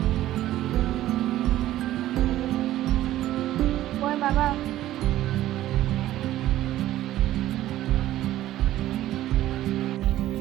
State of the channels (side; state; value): left; quieter; 14.1 dB